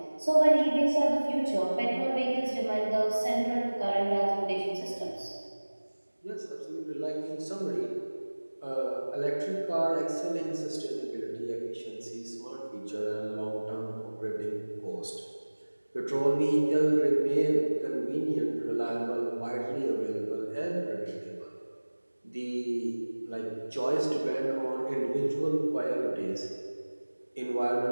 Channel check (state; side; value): inverted; both; correlation -1.00